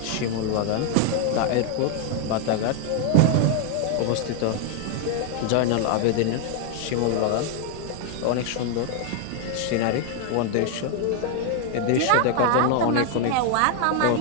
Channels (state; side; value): different; both; correlation 0.00